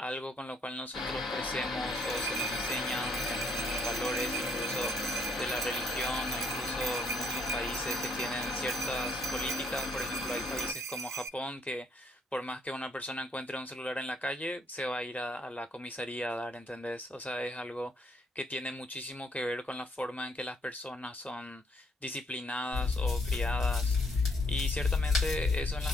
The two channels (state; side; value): normal; both; correlation 0.69